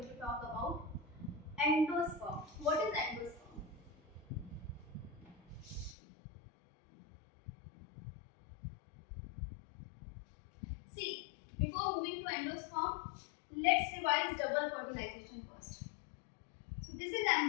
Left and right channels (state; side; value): drops out; right; at 6.0 s